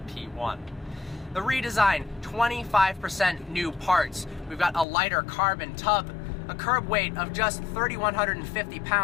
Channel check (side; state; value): right; drops out; at 4.9 s